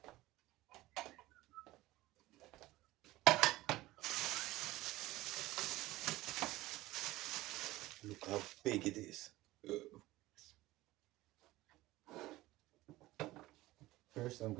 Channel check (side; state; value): left; quieter; 17.9 dB